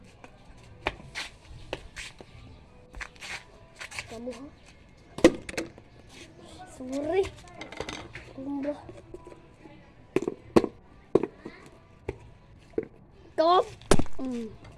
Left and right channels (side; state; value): both; identical; correlation 1.00